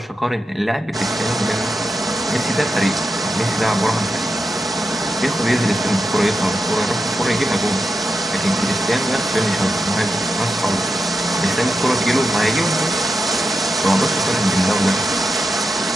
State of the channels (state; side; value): normal; both; correlation 0.88